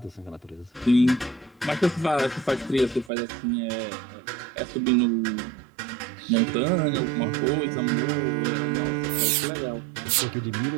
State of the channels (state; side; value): drops out; left; at 3.1 s